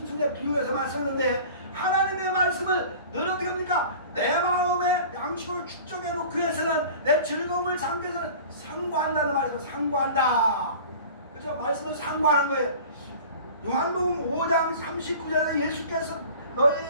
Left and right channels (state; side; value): inverted; both; correlation -0.41